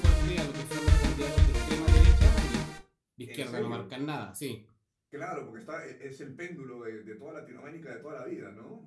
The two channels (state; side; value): identical; both; correlation 1.00